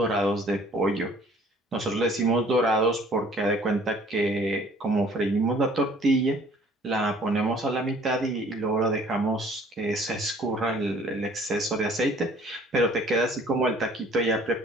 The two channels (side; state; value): both; normal; correlation 0.55